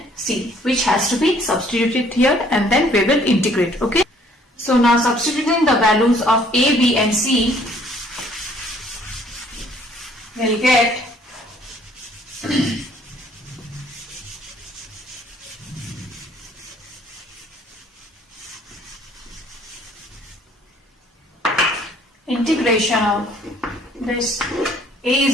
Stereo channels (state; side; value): normal; both; correlation 0.60